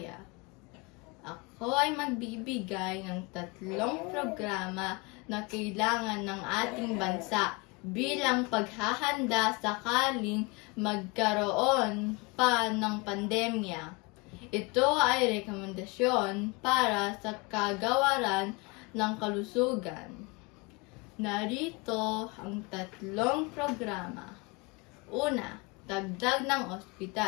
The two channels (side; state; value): right; quieter; 26.9 dB